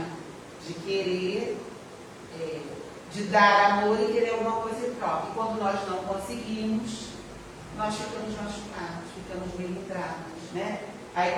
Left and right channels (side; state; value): both; identical; correlation 1.00